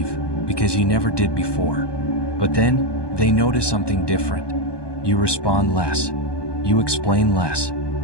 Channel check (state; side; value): late; right; 1.2 ms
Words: because you never did before. But then, they notice something different. You respond less. You explain less.